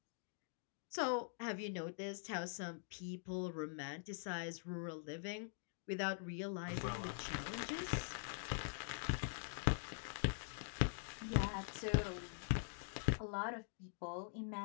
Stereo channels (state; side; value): silent; right; digital silence